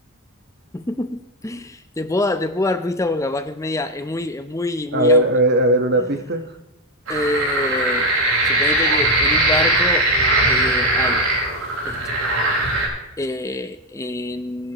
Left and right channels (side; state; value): both; normal; correlation 0.07